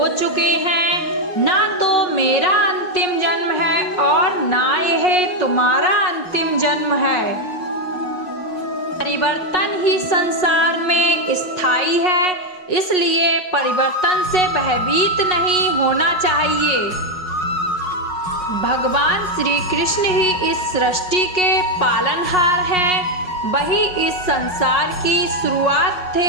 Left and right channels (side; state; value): right; late; 5.4 ms